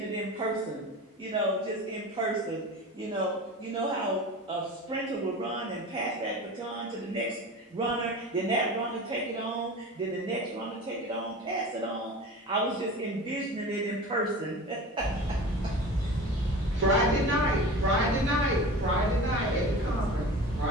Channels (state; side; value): normal; both; correlation 0.34